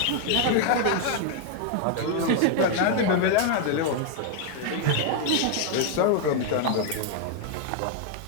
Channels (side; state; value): both; different; correlation 0.00